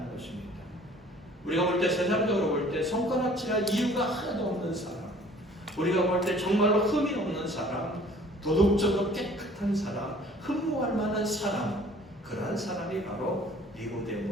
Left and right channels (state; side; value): normal; both; correlation 0.52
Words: 것입니다. 우리가 볼 때, 세상적으로 볼 때 손가락질할 이유가 하나도 없는 사람, 우리가 볼 때 정말로 흠이 없는 사람, 도덕적으로 깨끗한 사람, 흠모할 만한 사람, 그러한 사람이 바로